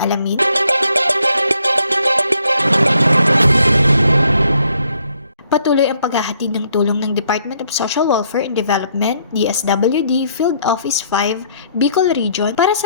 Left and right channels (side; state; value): both; inverted; correlation -0.69